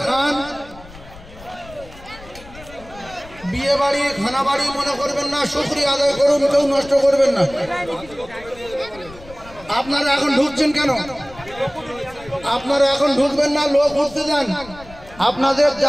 খান বিয়ে বাড়ি খানা বাড়ি মনে করবেন না শুকরিয়া আদায় করুন কেউ নষ্ট করবেন না আপনারা এখন ঢুকছেন কেন আপনারা এখন ঢুকবেন না লোক উঠতে যান আপনাদের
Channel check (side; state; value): left; noise; rumble, 19 dB below the sound